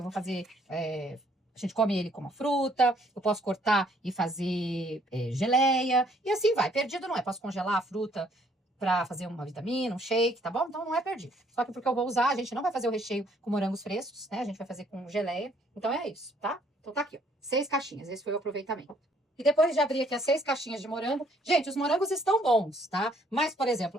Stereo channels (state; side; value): normal; both; correlation 0.65